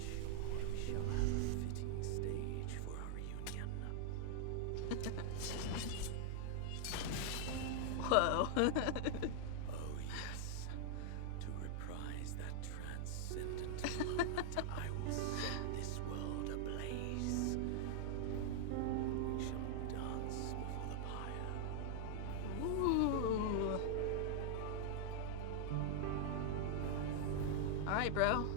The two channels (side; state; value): both; different; correlation -0.01